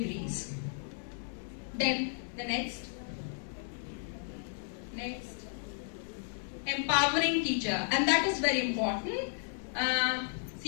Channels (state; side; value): silent; right; digital silence